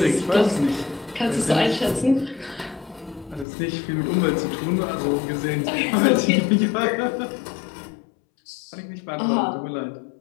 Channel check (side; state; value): right; drops out; at 3.5 s